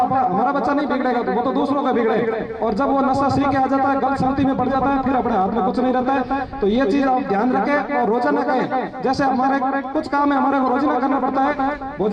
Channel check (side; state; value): both; identical; correlation 1.00